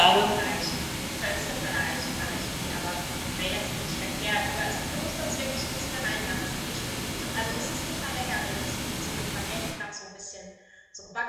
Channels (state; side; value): identical; both; correlation 1.00